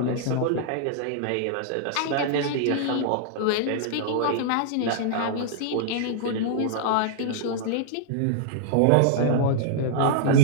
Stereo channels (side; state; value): both; different; correlation -0.01